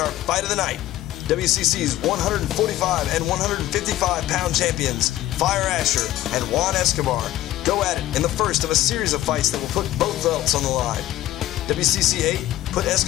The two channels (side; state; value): right; quieter; 14.7 dB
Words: fight of the night, WCC's 145 and 155-pound champions, Fire Asher and Juan Escobar, go at it in the first of a series of fights that will put both belts on the line. WCC VIII put